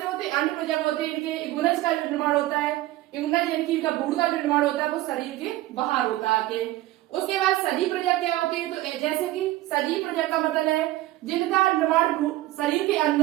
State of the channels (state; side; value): quieter; left; 16.5 dB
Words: होते हैं? अंड प्रजक होते हैं। इनके युग्मनज का जो निर्माण होता है, युग्मनज यानी कि इनका भ्रूण का जो निर्माण होता है वो शरीर के बाहर होता है आके। उसके बाद सजीव प्रजक क्या होते हैं? तो जैसे कि सजीव प्रजक का मतलब है जिनका निर्माण शरीर के